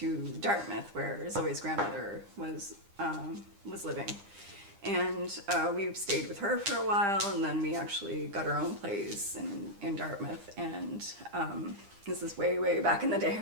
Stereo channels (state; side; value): late; left; 10 ms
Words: Dartmouth, where Zoe's grandmother was living, and we stayed with her for a while, and then we actually got our own place in Dartmouth. And this is way back in the day